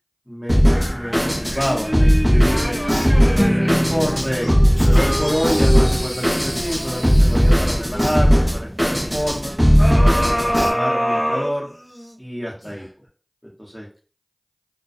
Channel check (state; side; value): identical; both; correlation 1.00